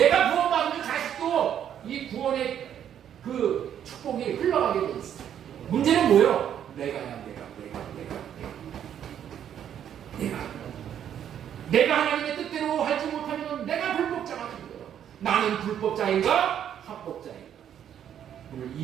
구원받으면 자식도 이 구원의 그 축복이 흘러가게 돼 있어. 문제는 뭐예요? 내가 하나님의 뜻대로 하지 못하면 내가 불법자가 되는 거예요. 나는 불법자인가? 합법자인가? 오늘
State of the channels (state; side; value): quieter; left; 9.6 dB